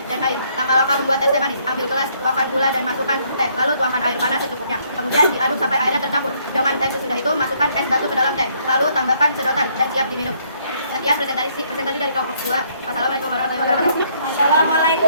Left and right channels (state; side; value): inverted; both; correlation -0.67